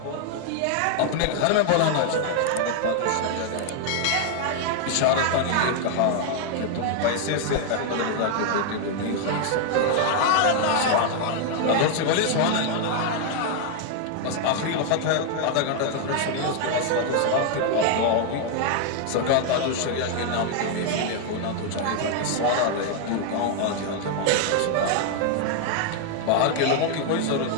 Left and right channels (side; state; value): both; different; correlation 0.00